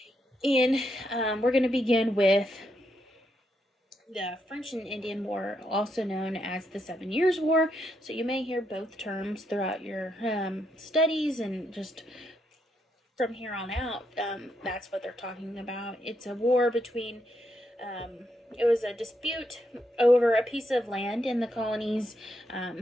And we're going to begin with the French and Indian War, also known as the 7 Years' War. So you may hear both terms throughout your studies, and just from here on out, that's what they're talking about. It's a war between, it was a dispute over a piece of land in the colonies,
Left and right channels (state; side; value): normal; both; correlation 0.79